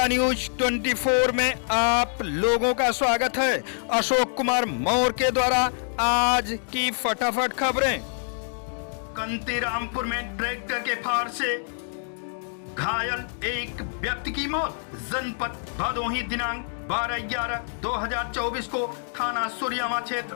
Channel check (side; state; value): right; silent; digital silence